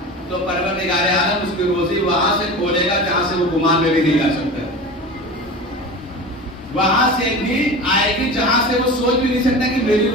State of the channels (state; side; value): normal; both; correlation 0.32